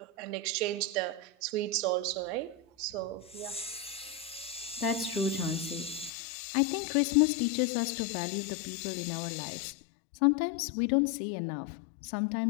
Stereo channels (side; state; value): right; drops out; at 6.1 s